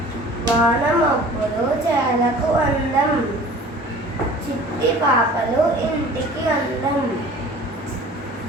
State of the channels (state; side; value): normal; both; correlation 0.45